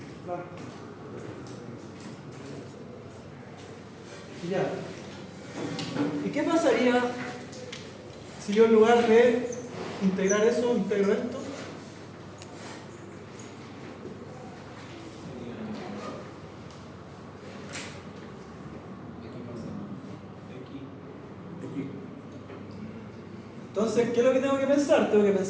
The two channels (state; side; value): identical; both; correlation 1.00